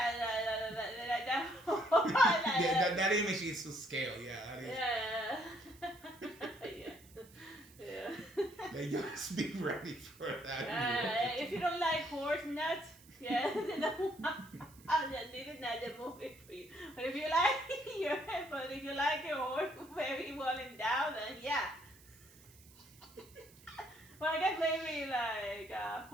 image is to scale. Yeah, that is. Yeah. Like, just be ready for that. If you don't like horse nuts, this is not the movie for you. But if you like your horse very well endowed, then yeah. Well, I guess maybe like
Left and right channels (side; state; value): right; noise; hiss, 24 dB below the sound